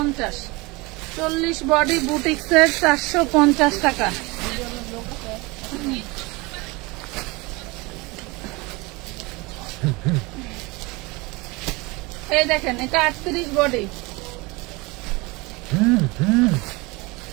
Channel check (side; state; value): left; quieter; 24.7 dB